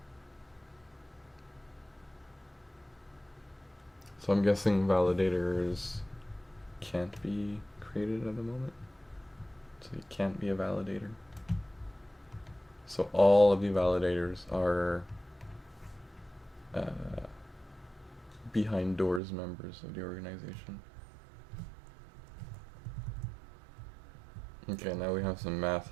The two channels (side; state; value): left; drops out; at 19.2 s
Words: So I'm guessing validators can't be created at the moment. So you can't be a validator. So all of the validators are behind doors members of the organization. Okay, now we have some